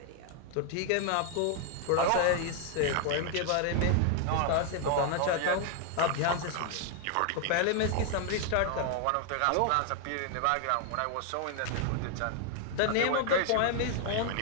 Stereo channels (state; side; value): different; both; correlation 0.00